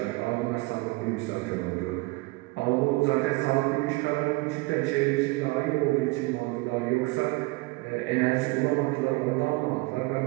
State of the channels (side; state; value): left; quieter; 23.3 dB